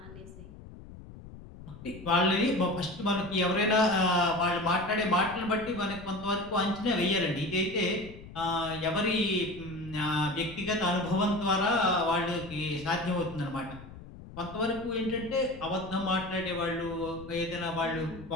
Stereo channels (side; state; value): left; noise; rumble, 16 dB below the sound